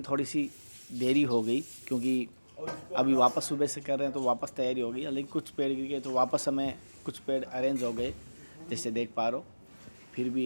थोड़ी सी देरी हो गई क्योंकि अभी वापस सुबह से कर रहे हैं तो वापस तैयारी हो गई, लेकिन कुछ पेड़ गिर गए तो वापस हमें कुछ पेड़ अरेंज हो गए जैसे देख पा रहे हो। फिर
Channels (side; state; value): both; inverted; correlation -1.00